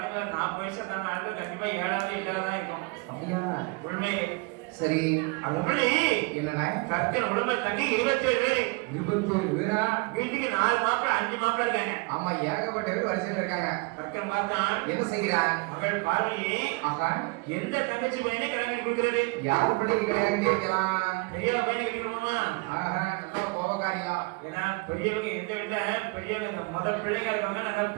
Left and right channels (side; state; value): left; quieter; 28.1 dB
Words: 40 வயசு தான ஆளுக்கு கண்டிப்பா 7ஆவது 8ஆவது தான் இருக்கும். அப்படியா? உண்மை. சரி அதுபடி என்னண்ணா கற்கன் உடம்பு தங்கி 27 பேர். 27 பேரா? வீட்டுக்கு 4 மாப்பிள 5 மாப்பிள இருக்காங்க. ஆமா ஏகப்பட்ட பேர் வரிசையில் இருக்காங்க. கற்கன் பார்த்தான் என்ன செய்கிறான்? மகள் பார்வதி ஆகா எந்த தங்கச்சி பையனை கல்யாணம் பண்ணி கொடுக்கிறது? யார் பிள்ளைக்கு கல்யாணம் கேட்கலாம்? பெரிய பையனை கட்டிக்கணுமா? ஆஹா நல்ல கோபக்காரியா. ஏன்னா பெரியவங்க எந்த வீட்டுல பெரியவங்க முதல் பிள்ளைங்க இருக்கவங்க நல்லா